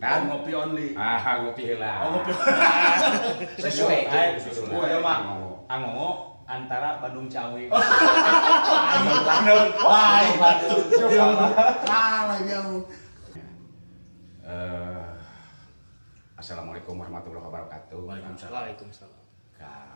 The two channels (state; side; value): inverted; both; correlation -1.00